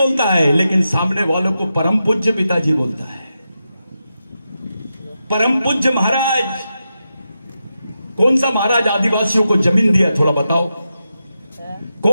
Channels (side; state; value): both; inverted; correlation -0.88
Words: है, लेकिन सामने वालों को परम पूज्य पिताजी बोलता है। परम पूज्य महाराज, कौन सा महाराज आदिवासियों को जमीन दिया? थोड़ा बताओ,